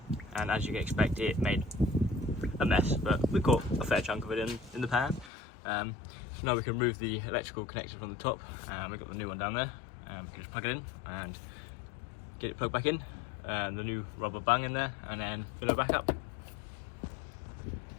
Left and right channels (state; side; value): drops out; right; at 5.3 s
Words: and as you can expect it made a mess, but we caught a fair chunk of it in the pan. So now we can remove the electrical connector from the top, and we've got the new one down there. We can just plug it in and get it plugged back in, and the new rubber bung in there, and then fill it back up.